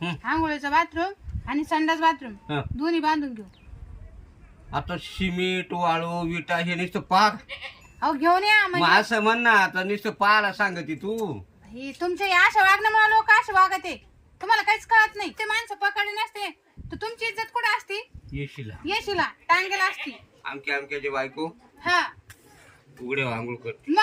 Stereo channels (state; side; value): identical; both; correlation 1.00